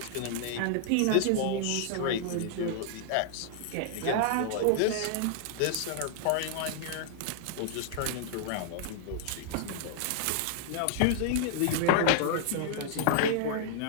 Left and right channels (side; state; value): both; different; correlation -0.01